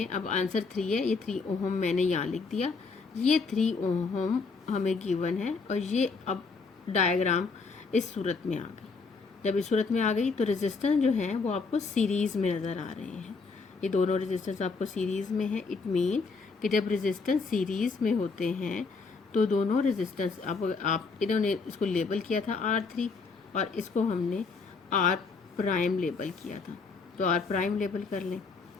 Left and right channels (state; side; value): quieter; right; 4.5 dB